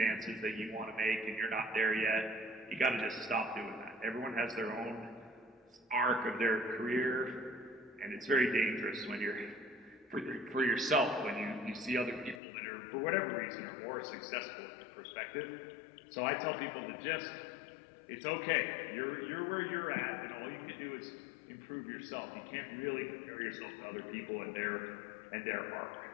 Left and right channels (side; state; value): right; drops out; at 12.4 s